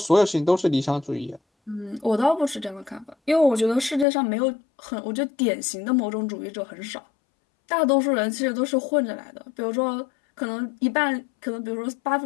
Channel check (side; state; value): right; drops out; at 4.0 s